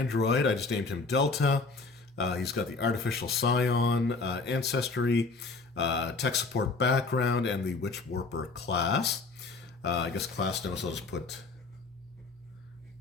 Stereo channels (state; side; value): quieter; right; 3.9 dB